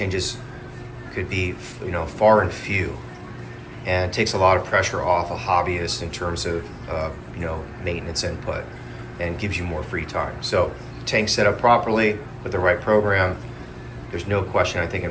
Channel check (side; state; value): both; identical; correlation 1.00